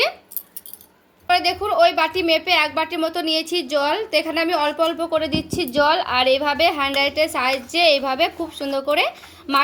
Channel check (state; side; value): identical; both; correlation 1.00